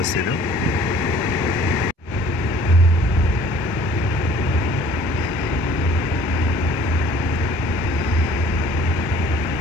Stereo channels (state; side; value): normal; both; correlation 0.53